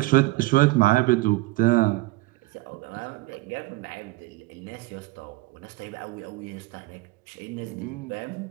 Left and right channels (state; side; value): quieter; left; 21.2 dB